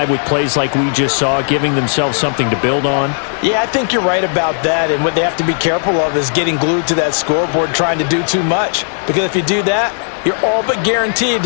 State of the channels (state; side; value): silent; right; digital silence